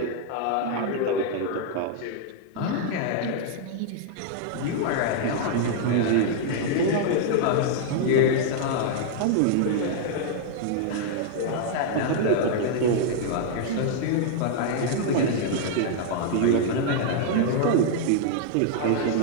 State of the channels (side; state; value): both; different; correlation -0.01